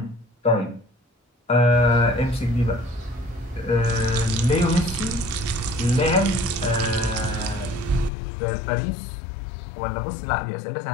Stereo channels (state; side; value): drops out; right; at 8.1 s